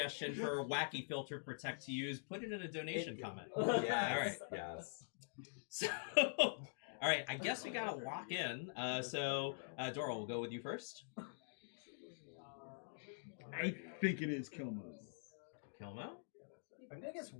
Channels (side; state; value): right; silent; digital silence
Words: for a wacky filter for Tech to use, put it in a donation comment. Yes, All right. yes. So, all right, I guess we gotta lock in. Dora, we'll go with you first. I think it is Kill Mode. Kilmo? I'm gonna guess